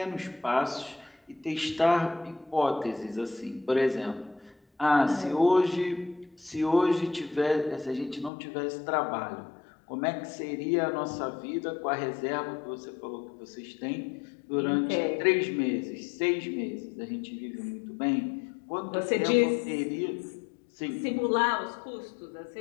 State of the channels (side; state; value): right; drops out; at 8.3 s